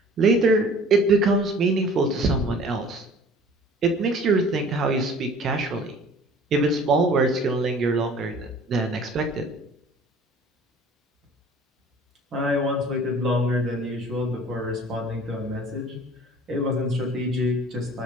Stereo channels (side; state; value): both; normal; correlation 0.49